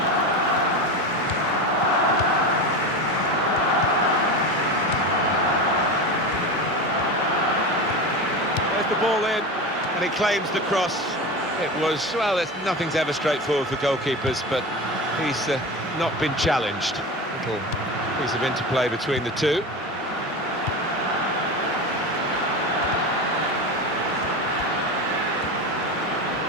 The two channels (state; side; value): normal; both; correlation 0.25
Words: There's the ball in, and he claims the cross. It was, well, nothing's ever straightforward for goalkeepers, but he's not been challenged. Little piece of interplay between the two.